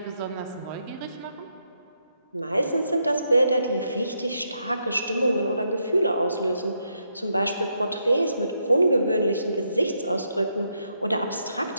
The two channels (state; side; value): inverted; both; correlation -0.79